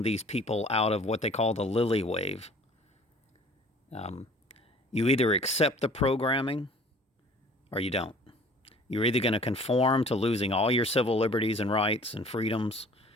these people out of what they call the lily wave. You either accept the programming or you don't. You're either going to conform to losing all your civil liberties and rights and freedoms,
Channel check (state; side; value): normal; both; correlation 0.50